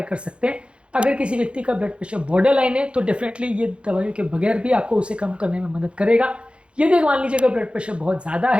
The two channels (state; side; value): late; left; 0.058 ms